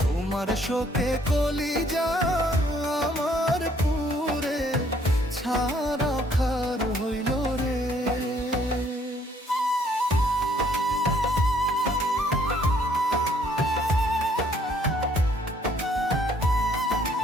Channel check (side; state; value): both; normal; correlation 0.64